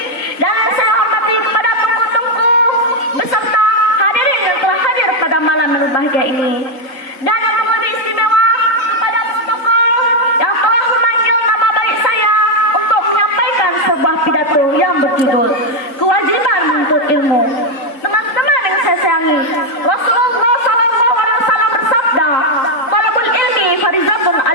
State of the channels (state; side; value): late; right; 3.8 ms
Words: dan saya hormati kepada tengku-tengku beserta hadirin yang telah hadir pada malam yang berbahagia ini, dan yang lebih istimewa kepada protokol yang telah memanggil nama baik saya untuk menyampaikan sebuah pidato yang berjudul kewajiban menuntut ilmu. Teman-teman yang saya sayangi, Rasulullah SAW bersabda, talabul ilmi farizatun